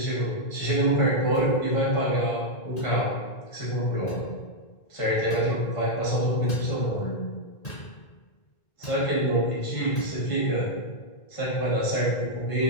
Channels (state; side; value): late; right; 1.8 ms